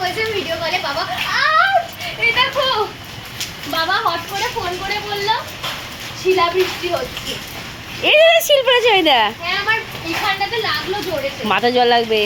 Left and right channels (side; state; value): both; identical; correlation 1.00